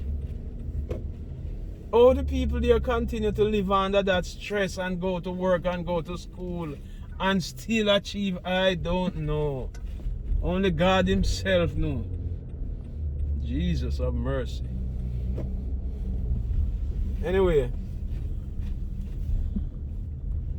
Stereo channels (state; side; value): identical; both; correlation 1.00